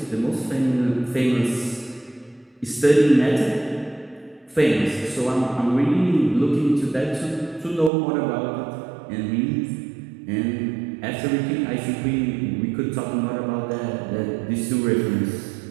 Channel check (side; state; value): left; drops out; at 7.9 s